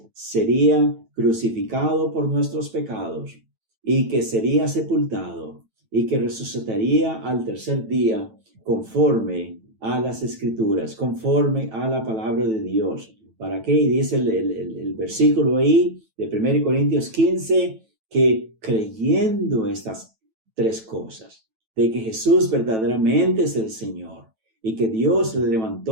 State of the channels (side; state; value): left; late; 9.1 ms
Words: sería crucificado por nuestros pecados, y que sería sepultado, y que resucitaría al tercer día conforme a las Escrituras, conforme a la palabra de Dios. ¿Para qué? Y dice el versículo ahí de 1 Corintios 15, que creyendo estas 3 cosas, de que Jesús verdaderamente es el Señor, y que Dios le